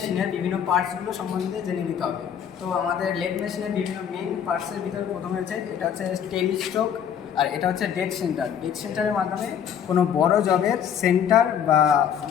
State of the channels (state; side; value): quieter; right; 8.5 dB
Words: বিভিন্ন পার্টসগুলো সম্বন্ধে জেনে নিতে হবে। তো আমাদের লেদ মেশিনের বিভিন্ন মেন পার্টসের ভিতরে প্রথমে হচ্ছে এটা হচ্ছে টেইল স্ট্রোক, আর এটা হচ্ছে ডেড সেন্টার। ডেড সেন্টারের মাধ্যমে কোনো বড় জবের সেন্টার বা